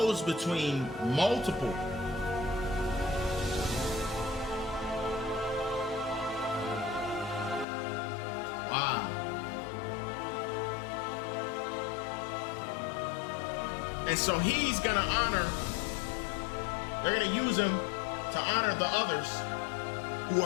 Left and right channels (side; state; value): right; drops out; at 7.7 s